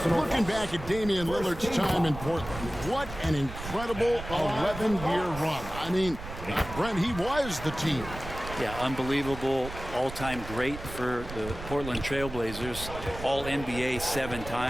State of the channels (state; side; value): noise; right; rumble, 11 dB below the sound